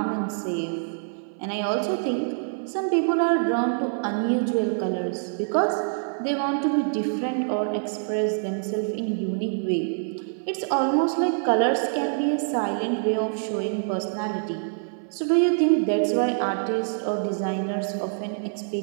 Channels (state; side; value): silent; left; 59 dB below the other